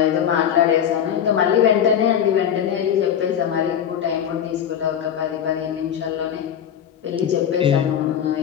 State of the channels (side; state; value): right; quieter; 9.1 dB